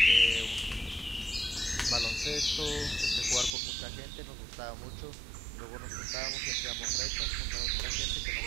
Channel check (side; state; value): left; drops out; at 3.6 s